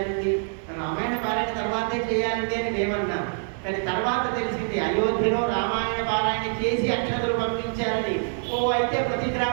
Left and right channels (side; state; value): left; silent; 61 dB below the other